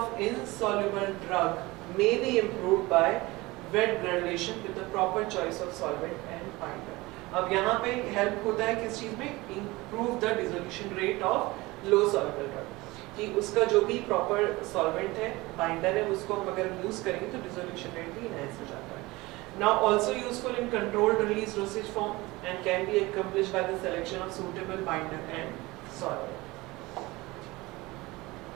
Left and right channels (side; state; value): left; quieter; 21.4 dB